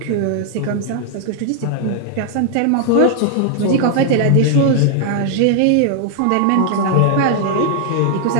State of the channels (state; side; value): different; both; correlation 0.00